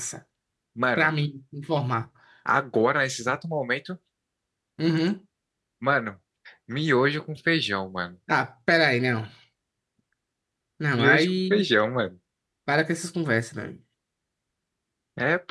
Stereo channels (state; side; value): identical; both; correlation 1.00